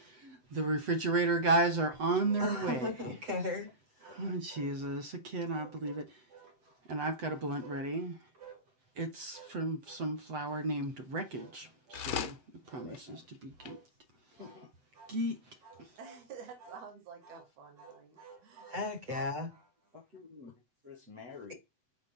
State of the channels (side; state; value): left; late; 7.9 ms